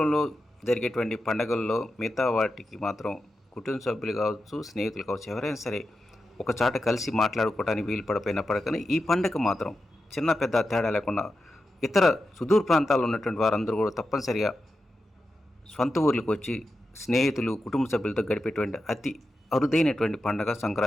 జరిగేటువంటి పండుగల్లో మిగతా వాటికి మాత్రం కుటుంబ సభ్యులు కావచ్చు, స్నేహితులు కావచ్చు, ఎవరైనా సరే ఒక చాట కలిసి మాట్లాడుకోవడానికి వీలు పడిపోయినప్పటికీ ఈ పండుగ మాత్రం చిన్న పెద్ద తేడా లేకుండా ఇతర సుదూర ప్రాంతాల్లో ఉన్నటువంటి వారందరూ కూడా తప్పనిసరిగా సొంత ఊర్లకు వచ్చి స్నేహితులు, కుటుంబ సభ్యులతో గడిపేటువంటి అతి అరుదైనటువంటి పండగ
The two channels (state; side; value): normal; both; correlation 0.90